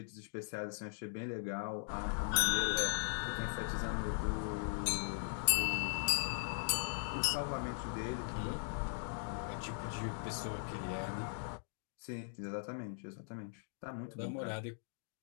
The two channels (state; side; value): silent; right; digital silence